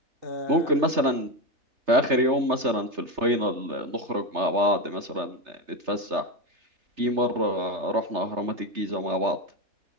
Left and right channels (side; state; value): left; late; 3.3 ms